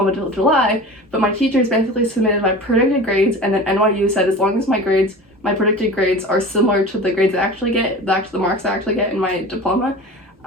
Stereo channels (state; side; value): normal; both; correlation 0.35